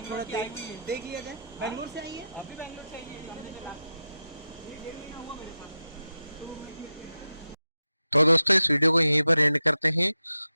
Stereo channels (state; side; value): inverted; both; correlation -0.90